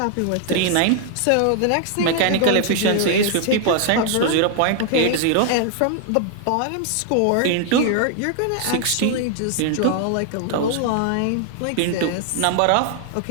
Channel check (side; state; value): both; different; correlation 0.00